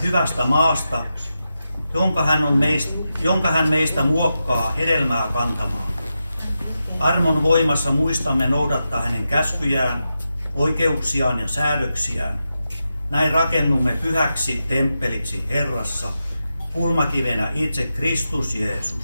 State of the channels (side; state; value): both; inverted; correlation -0.89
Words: maasta, jonka hän meistä muokkaa hedelmää kantamaan. Armon voimassa muistamme noudattaa hänen käskyjään, oikeuksiaan ja säädöksiään. Näin rakennumme pyhäksi temppeliksi Herrassa, kulmakivenä itse Kristus